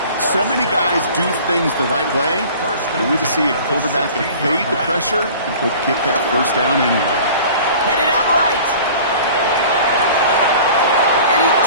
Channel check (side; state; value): both; inverted; correlation -0.44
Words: So many guys do things the right way, only to see a quarterback evade the pressure and go get that first down anyway. Headed out right. And he